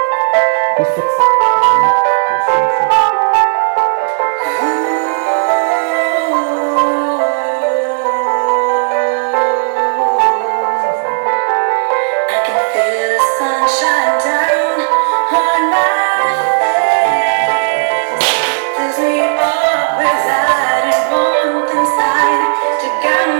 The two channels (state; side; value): silent; left; digital silence